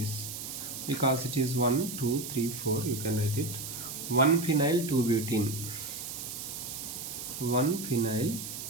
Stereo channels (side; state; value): right; noise; hiss, 7 dB below the sound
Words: Because it is 1, 2, 3, 4, you can write it. 1 phenyl 2 butene. 1 phenyl